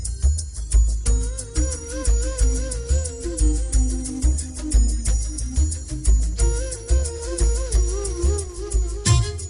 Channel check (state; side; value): identical; both; correlation 1.00